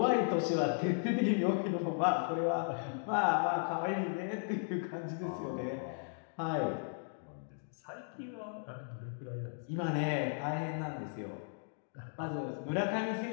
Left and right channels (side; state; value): right; silent; digital silence